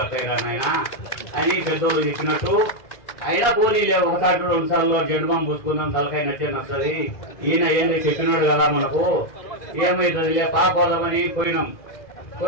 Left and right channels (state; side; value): late; right; 2.0 ms